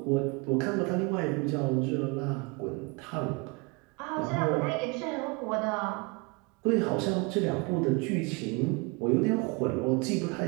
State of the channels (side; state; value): left; quieter; 28.9 dB